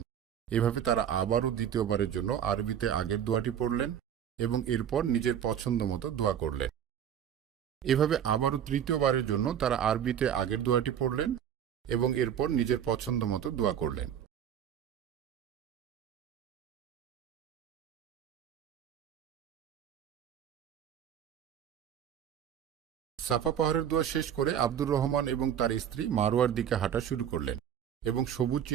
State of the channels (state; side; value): quieter; left; 9.3 dB